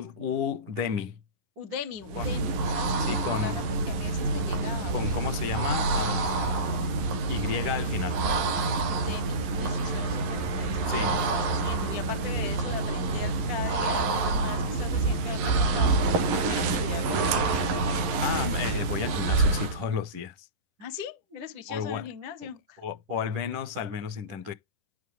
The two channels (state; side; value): late; left; 11 ms